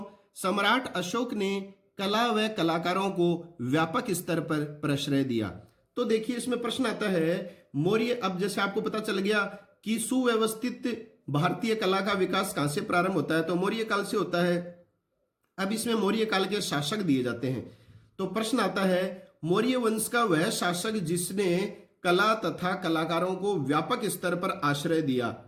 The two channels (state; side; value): identical; both; correlation 1.00